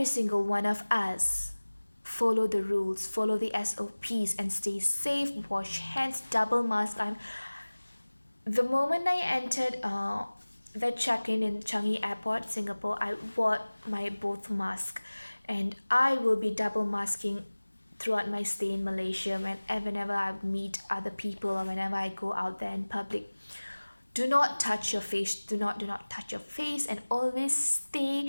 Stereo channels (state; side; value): inverted; both; correlation -1.00